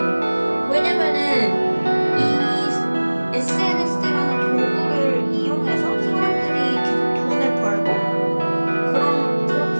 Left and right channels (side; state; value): both; inverted; correlation -1.00